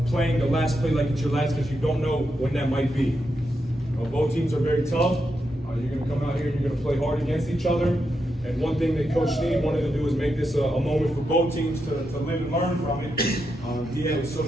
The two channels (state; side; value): normal; both; correlation 0.85